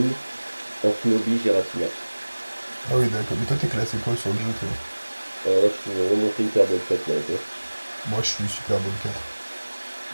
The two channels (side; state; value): both; inverted; correlation -1.00